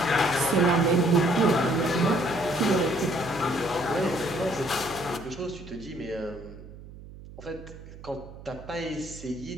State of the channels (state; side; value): noise; right; hum, 16 dB below the sound